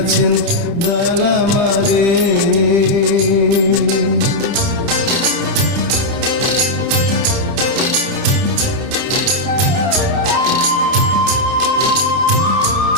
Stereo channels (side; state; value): left; late; 30 ms